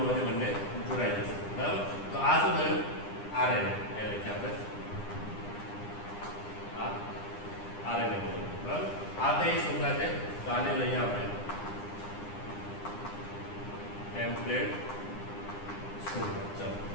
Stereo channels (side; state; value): right; late; 9.9 ms